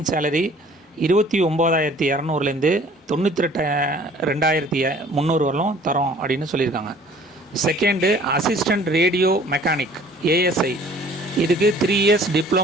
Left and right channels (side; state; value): both; normal; correlation 0.53